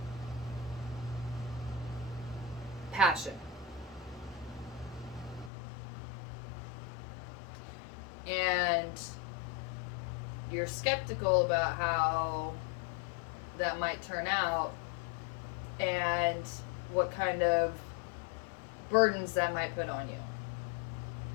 passion. And you're skeptical about how that might turn out and what kind of burdens that might put on you.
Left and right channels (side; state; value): right; drops out; at 5.5 s